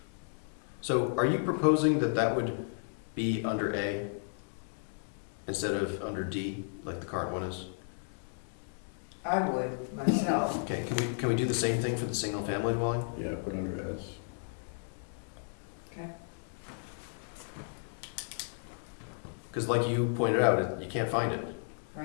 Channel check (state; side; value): silent; right; digital silence